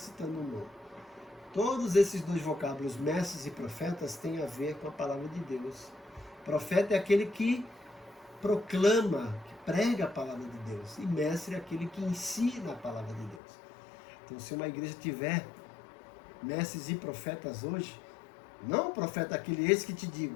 o nome. Todos esses dois vocábulos, mestres e profetas, têm a ver com a palavra de Deus. Profeta é aquele que proclama, que prega a palavra de Deus. E mestre é aquele que ensina a palavra de Deus. Então, se uma igreja tiver mestres e profetas hoje, não o profeta aquele esse que te digo,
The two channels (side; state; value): right; drops out; at 13.4 s